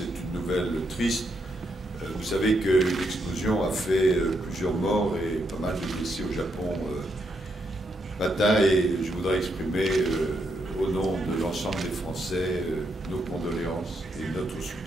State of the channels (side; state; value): both; normal; correlation 0.79